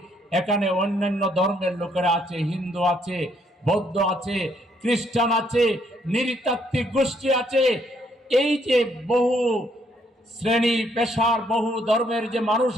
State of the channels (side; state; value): both; normal; correlation 0.70